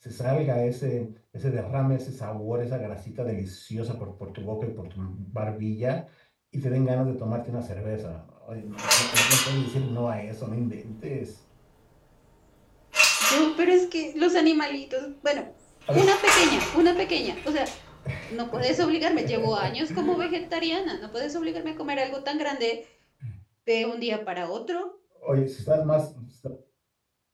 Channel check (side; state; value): both; identical; correlation 1.00